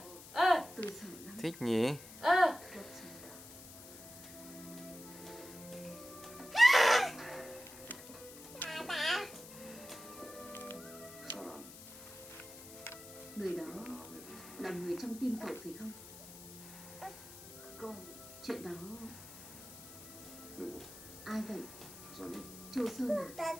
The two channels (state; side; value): noise; left; hiss, 15 dB below the sound